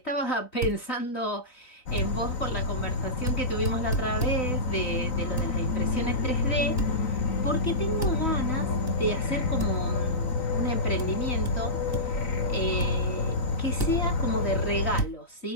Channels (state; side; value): late; right; 3.9 ms